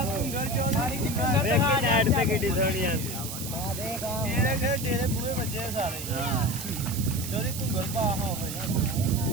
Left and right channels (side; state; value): right; noise; hiss, 8 dB below the sound